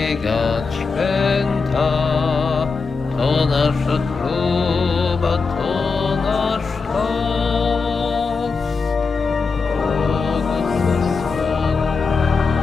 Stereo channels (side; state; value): right; quieter; 4.6 dB